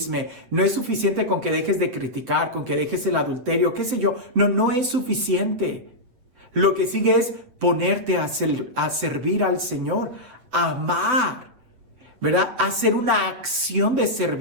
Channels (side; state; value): left; late; 7.9 ms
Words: no es suficiente con que dejes de criticar, con que dejes el adulterio, qué sé yo. No es suficiente. Lo que sigue es ponerte a servir al Señor, amar, ¿verdad? Hacer una acción de